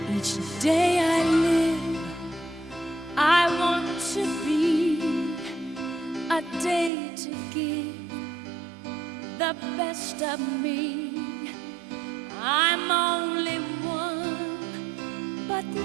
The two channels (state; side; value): drops out; left; at 6.9 s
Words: Each day I live, I want to be a day to give the best of me. I'm only one, but